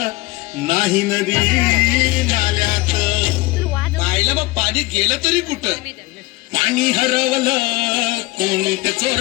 नाही नदी नाल्यात. पाहिलं मग पाणी गेलं तरी कुठं? पाणी हरवलं कोणी ते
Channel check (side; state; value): right; quieter; 21.5 dB